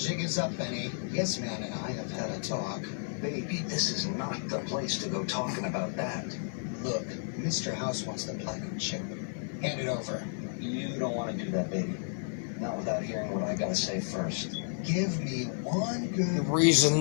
is up, Benny. Yes, Man and I have had a talk. Baby, this is not the place to go talking about that. Look, Mr. House wants the platinum chip. Hand it over. You don't want to do that, baby. Not without hearing what I gotta say first. Give me one good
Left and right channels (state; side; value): silent; right; digital silence